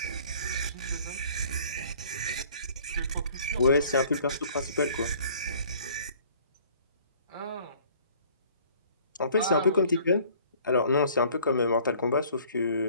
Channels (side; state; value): both; inverted; correlation -0.54